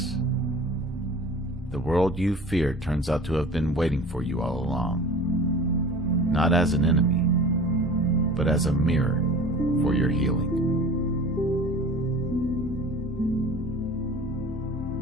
The world you feared turns out to have been waiting for you all along, not as an enemy, but as a mirror for your healing.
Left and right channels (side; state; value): both; normal; correlation 0.41